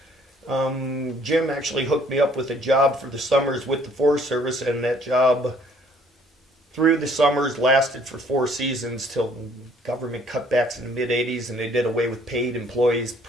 Jim actually hooked me up with a job for the summers with the Forest Service, and that job through the summers lasted for 4 seasons till government cutbacks in the mid-'80s, and they did away with paid employees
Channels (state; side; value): normal; both; correlation 0.60